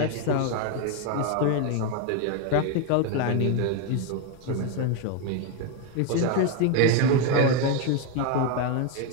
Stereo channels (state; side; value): different; both; correlation 0.02